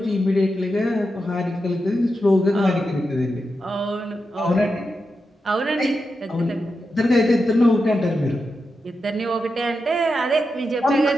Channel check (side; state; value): both; normal; correlation 0.88